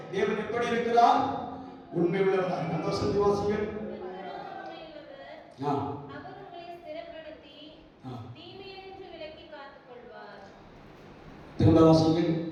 தேவன் எப்படி இருக்கிறார்? உண்மை உள்ளவராக. அந்த வசனத்தை வாசிங்கள். திரும்ப வாசிங்கள்.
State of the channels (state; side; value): identical; both; correlation 1.00